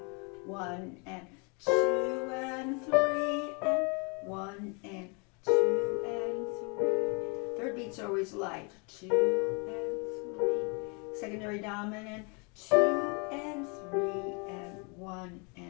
1 and 2 and 3 and 1 and 2 and 3. Third beats are always light. 2 and 3. Secondary dominant. 2 and 3 and 1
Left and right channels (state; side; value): quieter; right; 33.5 dB